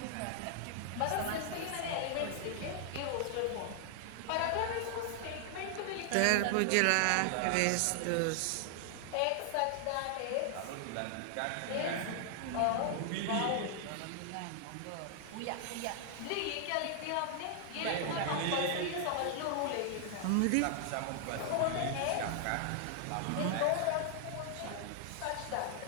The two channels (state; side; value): different; both; correlation 0.00